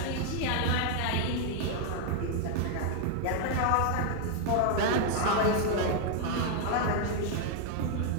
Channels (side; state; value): both; different; correlation 0.00